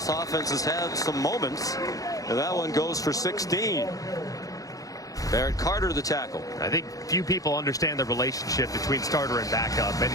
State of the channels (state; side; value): late; right; 0.17 ms